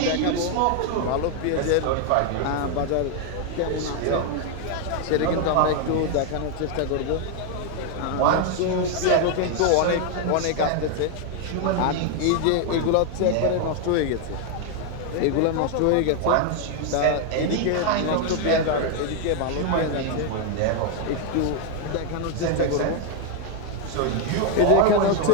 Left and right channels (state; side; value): different; both; correlation 0.01